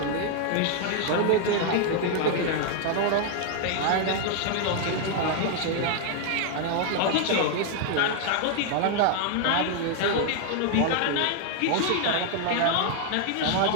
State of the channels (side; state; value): both; different; correlation 0.00